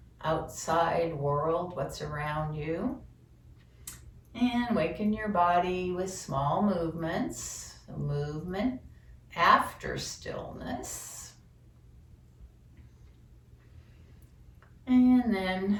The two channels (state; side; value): identical; both; correlation 1.00